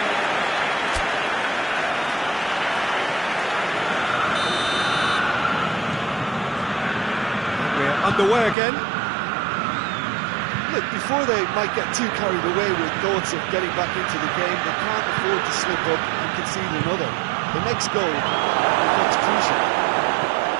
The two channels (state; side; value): drops out; left; at 8.6 s